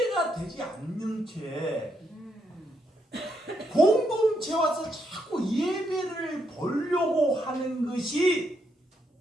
되지 않는 채 공동체 와서 자꾸 예배를 보려고 하는 것이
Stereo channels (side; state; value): both; normal; correlation 0.77